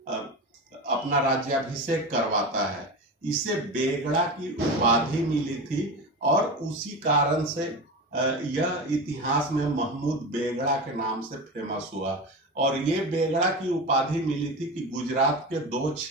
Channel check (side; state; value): both; normal; correlation 0.25